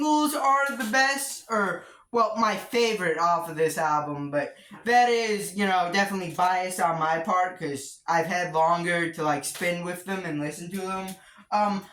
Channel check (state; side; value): identical; both; correlation 1.00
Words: are the best, or, well, my favorite off of this album, but that is, definitely biased on my part, because I've had longer to, like, spin with them and listen to them.